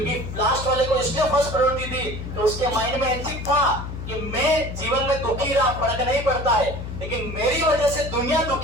लास्ट वाले को इसलिए फर्स्ट प्रायोरिटी दी तो उसके माइंड में एथिक था कि मैं जीवन में दुखी रहा, फर्क नहीं पड़ता है, लेकिन मेरी वजह से दुनिया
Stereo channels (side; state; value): left; noise; hum, 8 dB below the sound